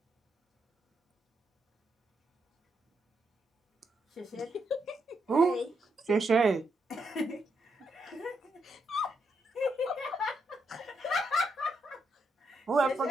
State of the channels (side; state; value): both; normal; correlation 0.79